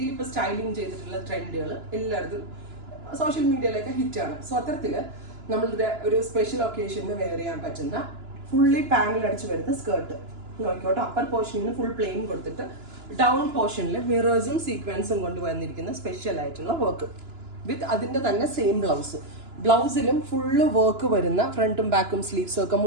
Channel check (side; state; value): left; late; 2.9 ms